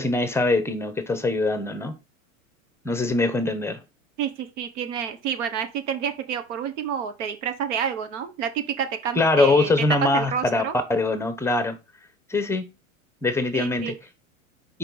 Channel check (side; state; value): both; normal; correlation 0.51